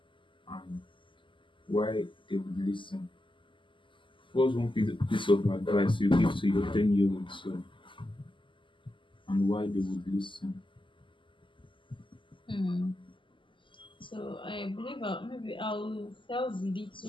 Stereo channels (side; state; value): right; late; 0.25 ms